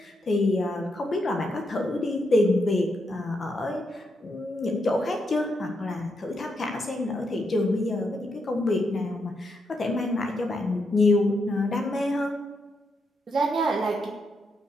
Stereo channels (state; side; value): normal; both; correlation 0.81